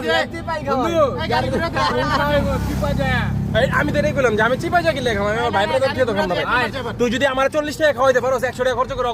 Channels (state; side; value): identical; both; correlation 1.00